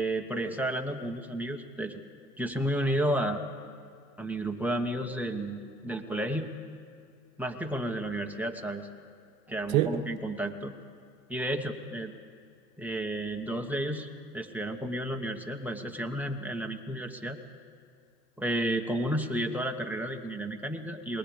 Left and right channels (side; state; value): both; normal; correlation 0.62